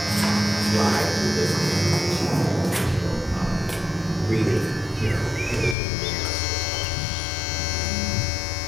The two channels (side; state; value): right; drops out; at 5.8 s